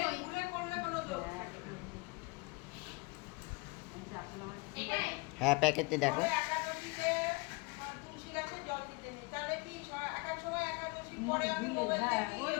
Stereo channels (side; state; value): right; quieter; 27.3 dB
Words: ফুলে করলে বলো তো হ্যাঁ প্যাকেটে দেখো একাদশীতে তুলসী গাছে জল দিতে নেই, তাহলে কি একা সময় একাদশী পরে আমি মোবাইল দেখি